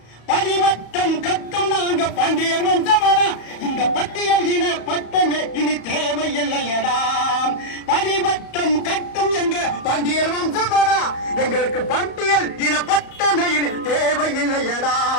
பரிவட்டம் கட்டும் நாங்க பாண்டியர் வம்சமடா. இந்த பட்டியல் இன பட்டமே இனி தேவையில்லையடா. பரிவட்டம் கட்டும் எங்க பாண்டியர் வம்சமடா. எங்களுக்கு பட்டியல் இன பட்டமே இனி தேவையில்லையடா.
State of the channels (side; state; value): right; late; 34 ms